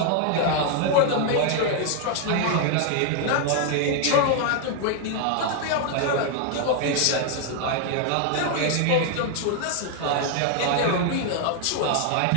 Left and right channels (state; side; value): different; both; correlation 0.00